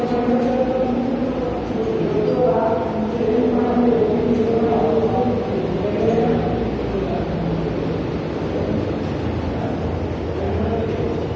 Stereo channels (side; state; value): both; identical; correlation 1.00